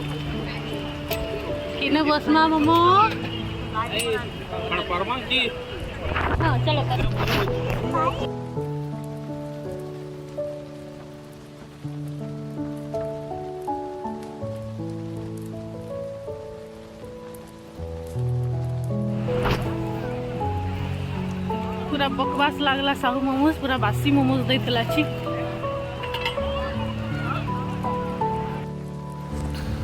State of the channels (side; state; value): both; identical; correlation 1.00